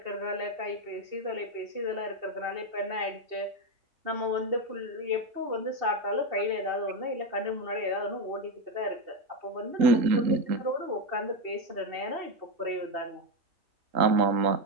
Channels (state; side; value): late; left; 3.7 ms